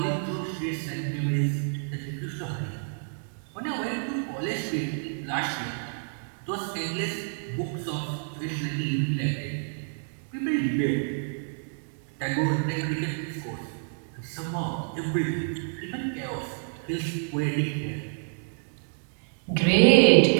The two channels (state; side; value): silent; left; digital silence